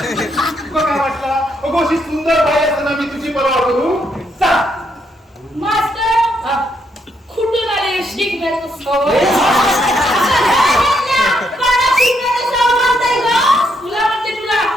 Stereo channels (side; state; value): both; normal; correlation 0.76